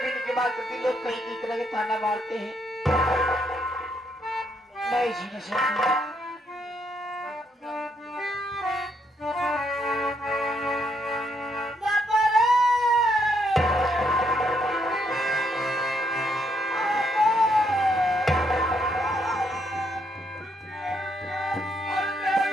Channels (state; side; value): normal; both; correlation 0.74